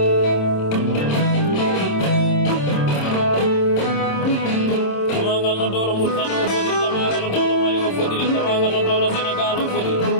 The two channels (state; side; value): late; right; 27 ms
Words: no dolo multano fodiri tamaga no dolo mali o fodiri tamaga no dolo Senegal o fodiri